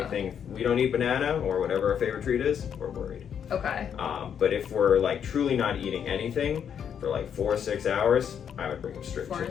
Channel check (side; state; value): right; quieter; 8.2 dB